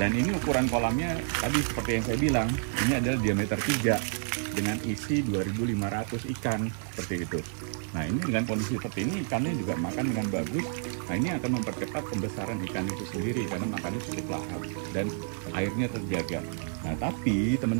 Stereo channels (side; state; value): left; silent; 58 dB below the other